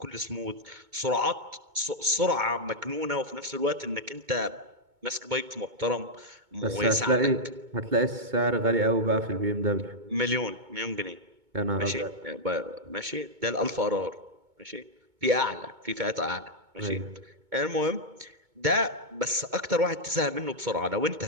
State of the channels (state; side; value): late; left; 2.2 ms